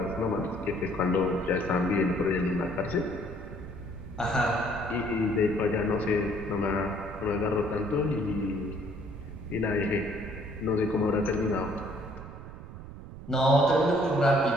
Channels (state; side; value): noise; right; rumble, 13 dB below the sound